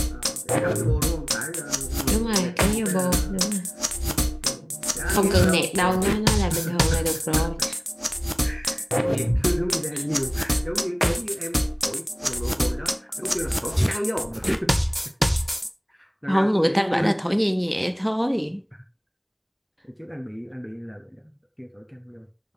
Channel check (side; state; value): both; identical; correlation 1.00